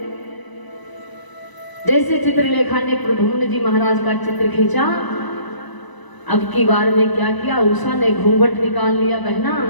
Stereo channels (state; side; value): late; right; 1.0 ms